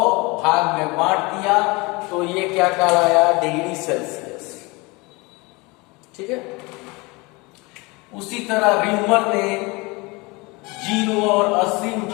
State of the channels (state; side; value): quieter; right; 25.4 dB